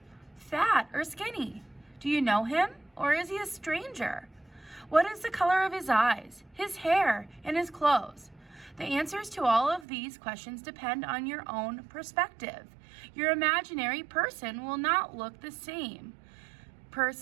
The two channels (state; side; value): drops out; left; at 9.9 s